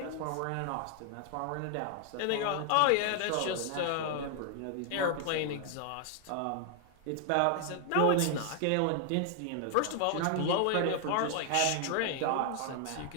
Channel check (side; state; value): both; different; correlation 0.00